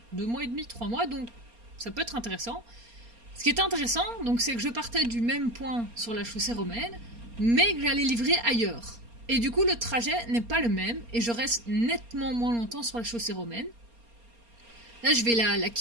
2 mois et demi, 3 mois, donc ça peut être intéressant. Ce qui est intéressant, donc, c'est que je partais du même point sur la chaussée romaine, mais que j'allais livrer ailleurs. Et du coup, le trajet n'est pas le même, et je reste nettement moins longtemps sur la chaussée romaine. Là, je vais la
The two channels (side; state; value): left; late; 4.3 ms